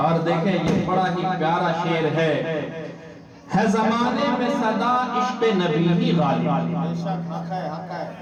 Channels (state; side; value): identical; both; correlation 1.00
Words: دیکھیں یہ بڑا ہی پیارا شعر ہے زمانے میں صدا عشق نبی ہی غالب،